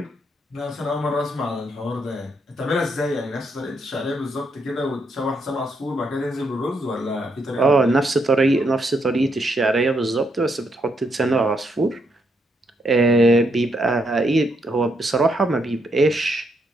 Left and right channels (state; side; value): normal; both; correlation 0.77